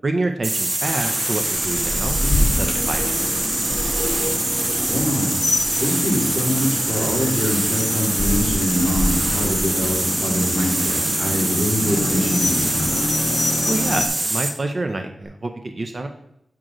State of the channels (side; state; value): both; normal; correlation 0.94